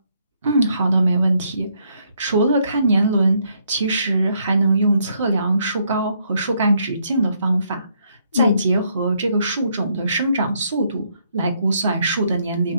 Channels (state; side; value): inverted; both; correlation -0.72